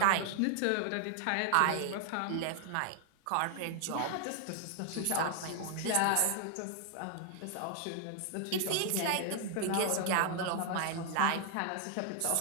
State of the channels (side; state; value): both; different; correlation 0.00